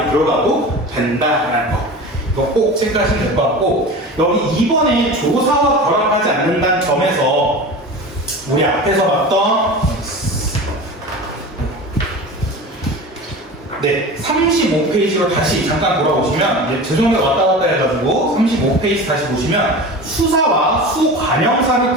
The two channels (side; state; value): both; normal; correlation 0.33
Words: 들어가도 된다라는 거, 이거 꼭 체크하시면 될 것 같고, 여기 2번에 조사와 결합하지 않는다는 점에서 우리 앞에서 봤던 35페이지로 다시 잠깐 돌아오시면, 죄송해요, 왔다 갔다 해가지고 35페이지 다시 보시면 수사와 수관형사를